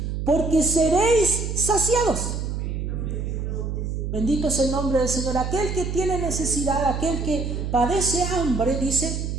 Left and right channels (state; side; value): noise; right; hum, 3 dB below the sound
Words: porque seréis saciados. Bendito es el nombre del Señor. Aquel que tiene necesidad, aquel que padece hambre,